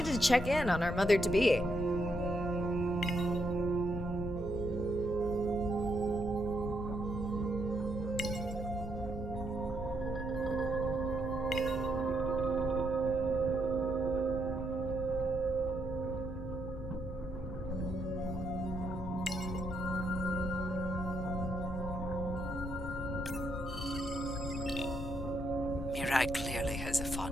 to check in on our mother-to-be. Mirai clearly has a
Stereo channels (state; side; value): noise; left; hum, 12 dB below the sound